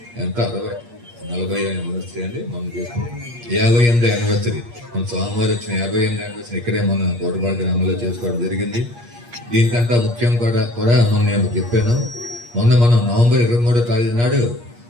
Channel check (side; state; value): left; late; 8.5 ms